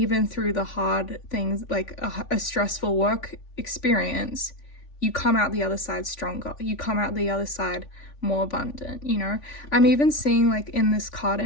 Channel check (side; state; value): right; late; 3.5 ms